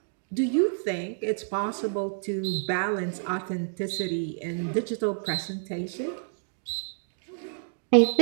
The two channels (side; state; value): left; silent; digital silence